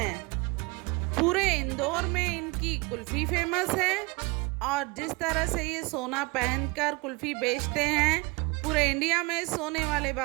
पूरे इंदौर में इनकी कुल्फी फेमस है और जिस तरह से ये सोना पहनकर कुल्फी बेचते हैं, पूरे इंडिया में सोने वाले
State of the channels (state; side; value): quieter; left; 26.2 dB